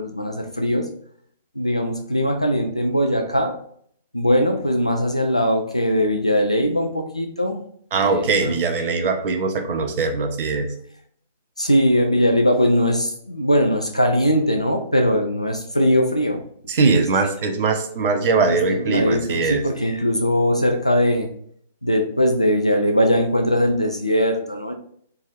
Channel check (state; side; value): inverted; both; correlation -0.67